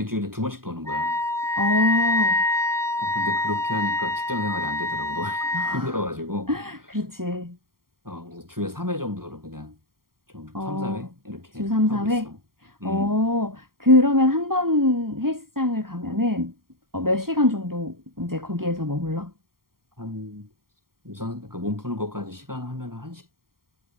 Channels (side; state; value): left; late; 0.93 ms